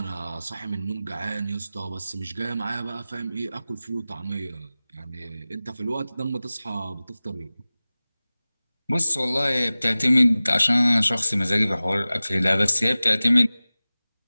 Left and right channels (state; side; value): inverted; both; correlation -0.97